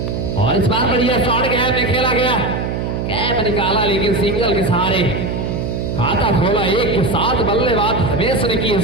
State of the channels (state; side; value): noise; right; hum, 2 dB below the sound